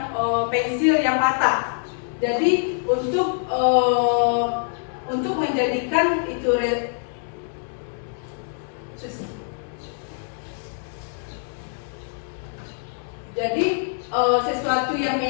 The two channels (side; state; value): right; silent; 62 dB below the other